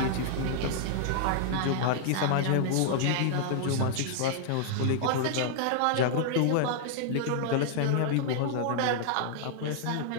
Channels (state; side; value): different; both; correlation -0.01